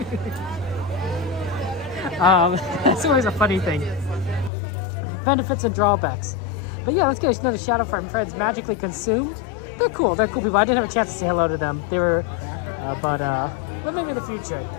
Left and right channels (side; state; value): right; drops out; at 4.5 s